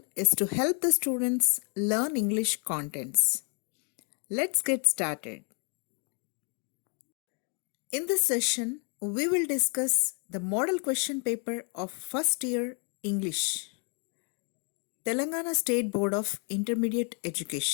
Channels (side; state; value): right; quieter; 38.6 dB